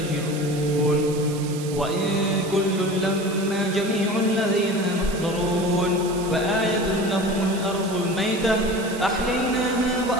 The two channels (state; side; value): noise; right; hiss, 14 dB below the sound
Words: وإن كل لما جميع الذين محضرون. وآية لهم الأرض الميتة أحييناها